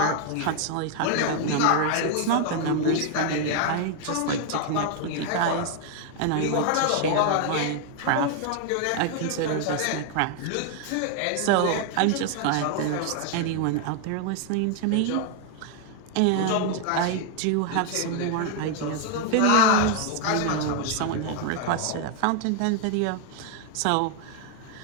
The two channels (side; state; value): both; different; correlation 0.00